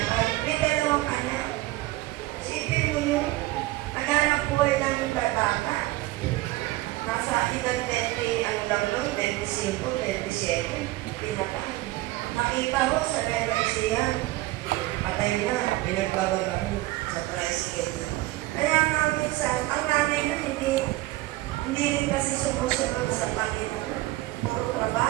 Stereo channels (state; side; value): quieter; left; 18.5 dB